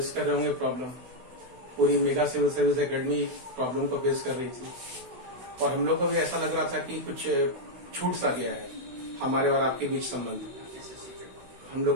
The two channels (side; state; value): left; late; 16 ms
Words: कर रहे होंगे प्रॉब्लम। पूरी mega civil service academy problem को फेस कर रही थी और हम लोग को भी ऐसा लग रहा था कि कुछ छूट सा गया है हमारे और आपके बीच संबंध। हम